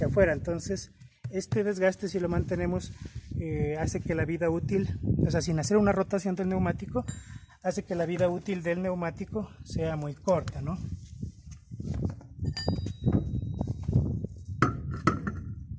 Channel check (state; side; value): identical; both; correlation 1.00